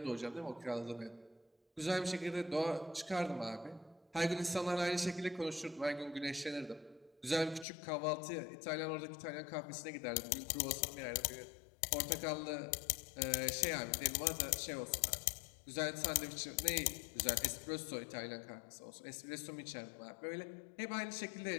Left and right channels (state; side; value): drops out; right; at 7.7 s